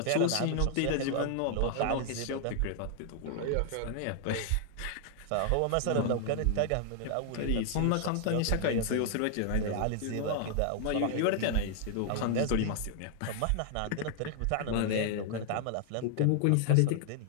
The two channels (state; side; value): different; both; correlation 0.00